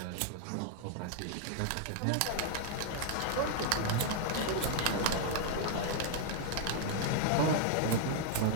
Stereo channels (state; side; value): different; both; correlation 0.00